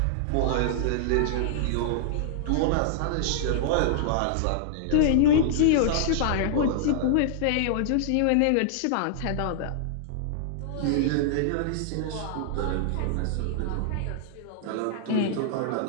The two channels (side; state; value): both; different; correlation -0.01